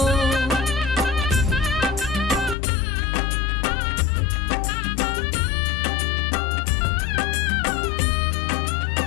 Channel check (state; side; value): drops out; right; at 2.6 s